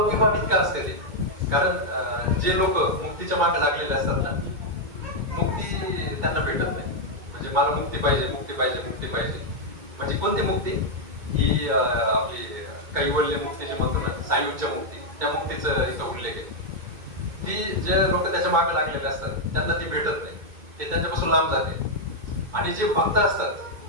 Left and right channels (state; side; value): late; left; 2.2 ms